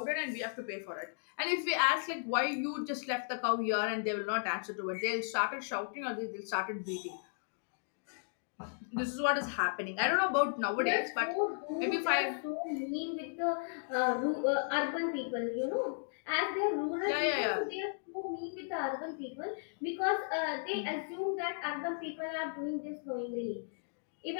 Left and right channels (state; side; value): silent; right; digital silence